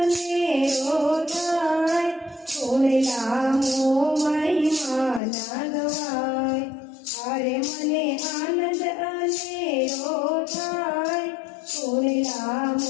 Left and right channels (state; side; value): drops out; right; at 5.2 s